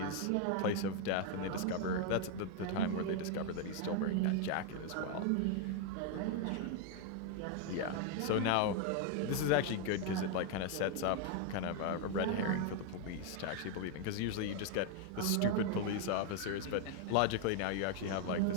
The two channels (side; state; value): both; different; correlation 0.01